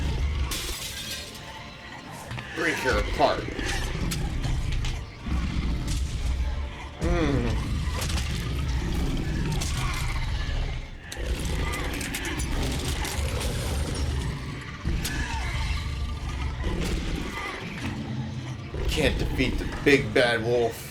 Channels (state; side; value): identical; both; correlation 1.00